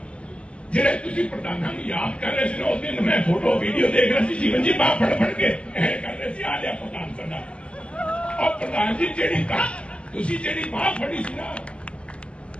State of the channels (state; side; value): late; right; 0.059 ms